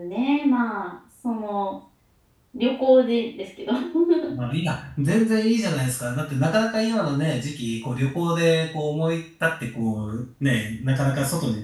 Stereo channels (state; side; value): identical; both; correlation 1.00